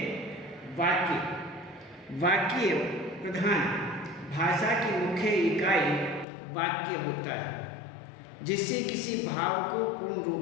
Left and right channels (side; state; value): right; drops out; at 6.2 s